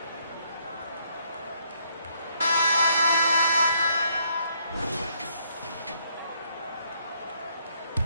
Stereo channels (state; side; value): inverted; both; correlation -0.70